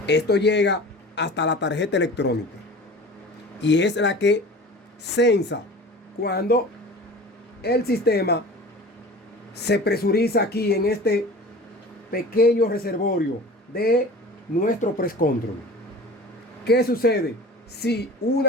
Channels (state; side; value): normal; both; correlation 0.40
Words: Esto llega hasta la tarjeta electrónica y es la que sensa cuando el sistema se presuriza aquí en este pequeño reservorio de nuestro press control. ¿Qué sucede? Si